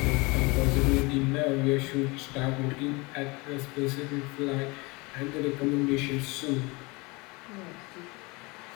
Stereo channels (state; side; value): quieter; right; 25.8 dB